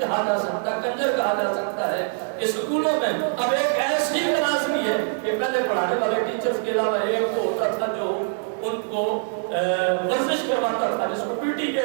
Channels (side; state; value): left; silent; digital silence